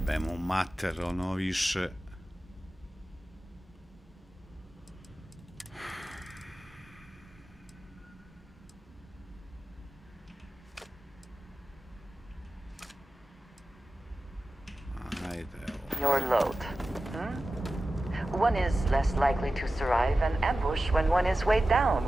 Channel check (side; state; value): both; normal; correlation 0.95